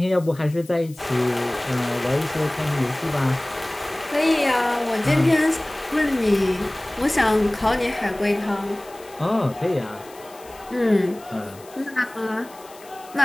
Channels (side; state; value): left; noise; hiss, 22 dB below the sound